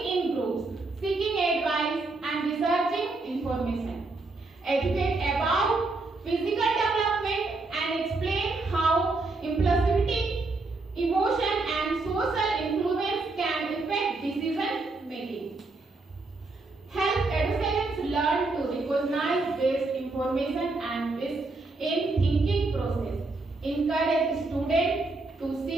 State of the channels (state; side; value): quieter; left; 3.4 dB